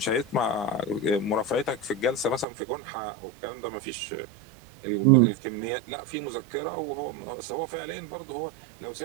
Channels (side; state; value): left; drops out; at 2.5 s